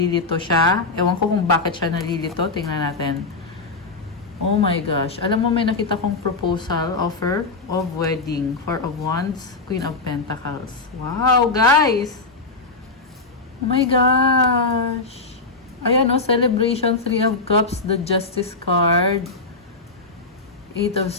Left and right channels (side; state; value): right; quieter; 3.7 dB